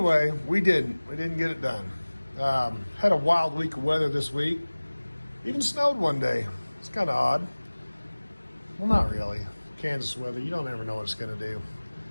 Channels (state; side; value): inverted; both; correlation -1.00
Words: we didn't get it done. Had a wild week of weather this week. Even snowed one day. It's kind of odd. Well, not really. Kansas weather, you don't ever know what it's going to do.